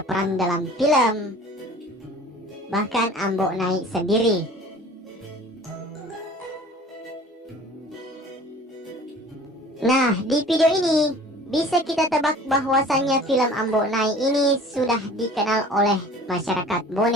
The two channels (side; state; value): both; normal; correlation 0.46